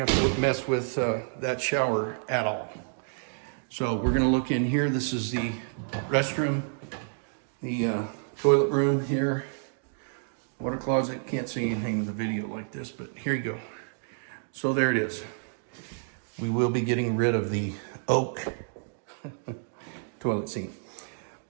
to mess with that shower at all. So we're going to look in here. This is the restroom, the toilet room here, water closet. Can't see anything in the video like this, but here you go. So there it is. We will be getting rid of the oak toilet seat.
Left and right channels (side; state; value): left; silent; digital silence